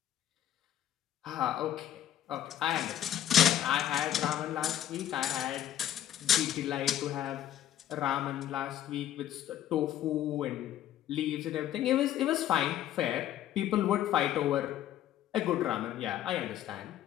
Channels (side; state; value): right; quieter; 11.6 dB